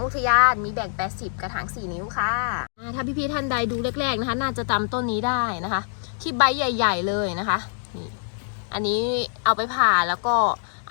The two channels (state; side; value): silent; right; digital silence